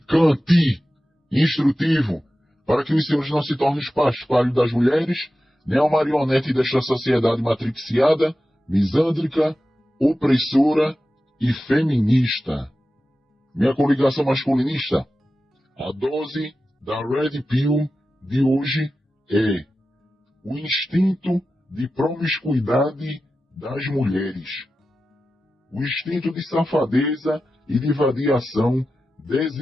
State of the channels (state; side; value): normal; both; correlation 0.93